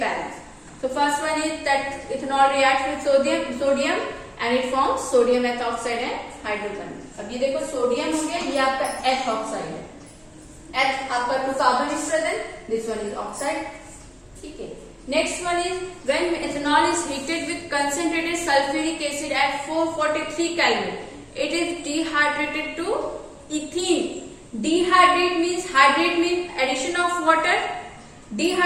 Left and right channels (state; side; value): identical; both; correlation 1.00